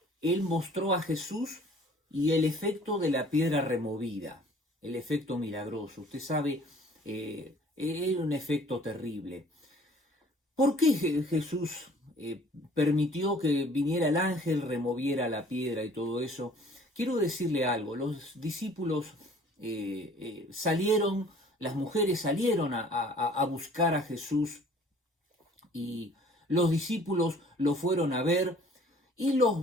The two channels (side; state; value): both; normal; correlation 0.53